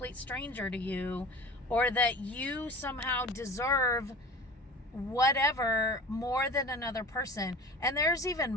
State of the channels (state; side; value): normal; both; correlation 0.38